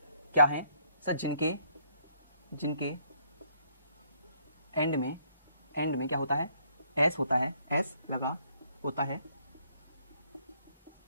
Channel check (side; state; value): both; inverted; correlation -0.67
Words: क्या है सर? जिनके एंड में क्या होता है? एस होता है, एस लगा होता है